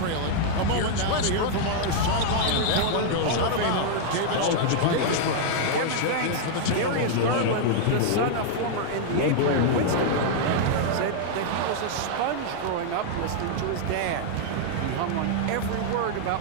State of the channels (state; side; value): different; both; correlation -0.01